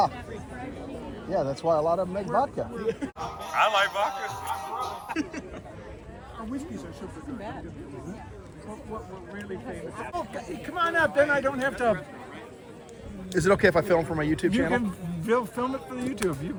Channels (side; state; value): both; identical; correlation 1.00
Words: Yeah, that's why a lot of them make vodka. I like vodka. Our whiskeys are super good. What we're really famous. Oh, come on up, then I don't have to. Is it okay if I film for my YouTube You channel? can film it for the YouTube, you